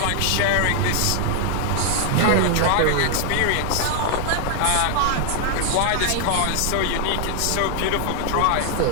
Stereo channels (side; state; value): both; different; correlation 0.00